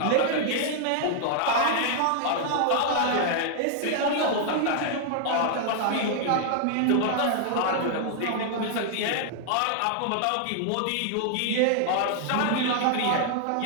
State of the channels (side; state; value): both; different; correlation 0.00